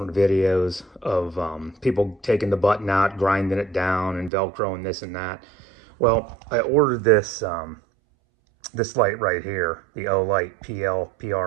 videos of people taking the button out, grinding it down, and Velcroing this and that. Well, I ordered this this light right here, the O-Light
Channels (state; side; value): drops out; left; at 4.3 s